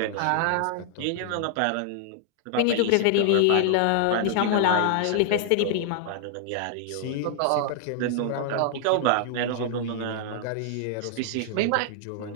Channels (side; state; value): both; different; correlation 0.00